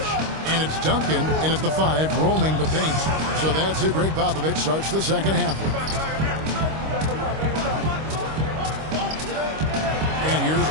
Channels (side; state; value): left; late; 25 ms